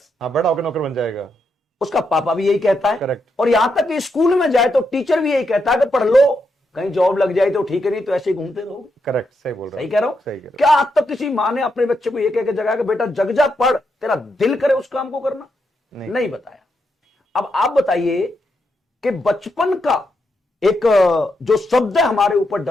हाँ, बड़ा होकर नौकर बन जाएगा। उसका पापा भी यही कहता है। करेक्ट। और यहां तक कि स्कूल में जाए तो टीचर भी यही कहता है कि पढ़ लो, कहीं जॉब लग जाए तो ठीक है, नहीं तो ऐसे ही घूमते रहोगे। करेक्ट, सही बोल रहा हूं। सही कह रहा हूं। सही कह रहा हूं। क्या आज तक किसी माँ ने अपने बच्चे को ये कह के जगाया कि बेटा जग जा, पढ़, तेरा दिल करे उस काम को करना? नहीं बताया। अब आप बताइए कि बचपन का एक जो शब्द हमारे ऊपर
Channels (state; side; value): normal; both; correlation 0.82